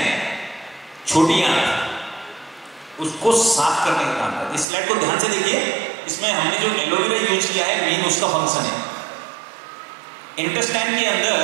छोटी आंत, उसको साफ करने का काम करते हैं। इस स्लाइड को ध्यान से देखिए, इसमें हमने जो एलोवेरा यूज किया है मेन उसका फंक्शन है। इंटेस्टाइन के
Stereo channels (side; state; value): left; drops out; at 4.7 s